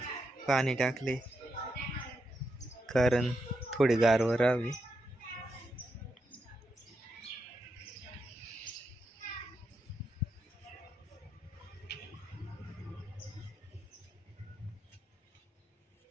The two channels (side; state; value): both; normal; correlation 0.84